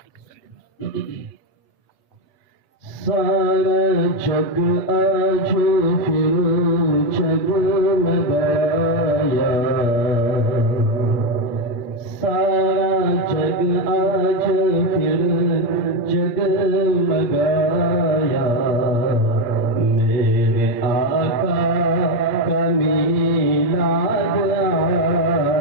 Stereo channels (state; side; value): late; right; 8.5 ms